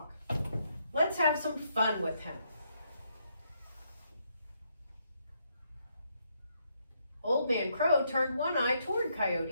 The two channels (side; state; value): both; inverted; correlation -0.76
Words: Let's have some fun with him. Old Man Crow turned one eye toward